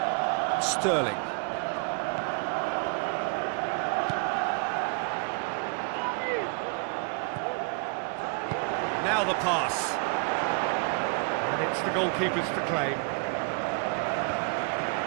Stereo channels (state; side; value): quieter; left; 37.2 dB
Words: Sterling. Now the pass. And it's the goalkeeper's to claim.